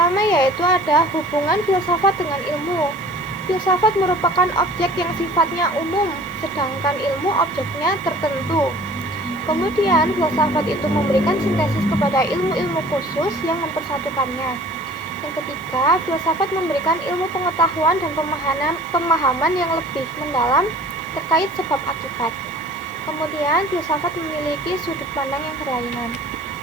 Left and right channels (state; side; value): noise; right; hiss, 25 dB below the sound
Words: yaitu ada hubungan filsafat dengan ilmu. Filsafat merupakan objek yang sifatnya umum, sedangkan ilmu objeknya tertentu. Kemudian, filsafat itu memberikan sintesis kepada ilmu-ilmu khusus yang mempersatukannya. Yang ketiga, filsafat memberikan ilmu pengetahuan dan pemahaman yang lebih mendalam terkait sebab akibat. Kemudian, filsafat memiliki sudut pandang yang berlainan.